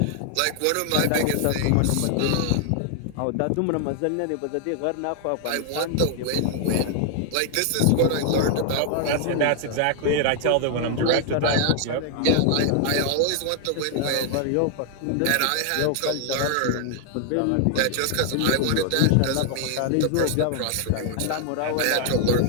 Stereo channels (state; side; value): different; both; correlation 0.00